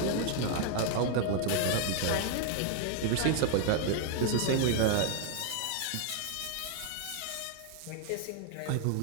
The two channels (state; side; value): different; both; correlation 0.00